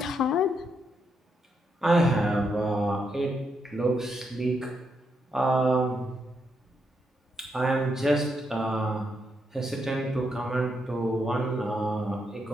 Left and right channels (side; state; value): both; normal; correlation 0.80